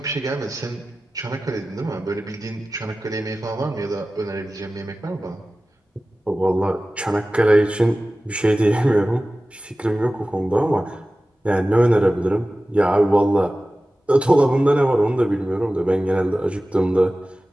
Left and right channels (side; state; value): both; normal; correlation 0.96